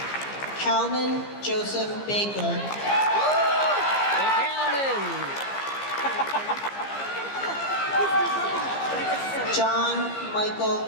Calvin Joseph Baker. John Michael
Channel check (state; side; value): late; right; 15 ms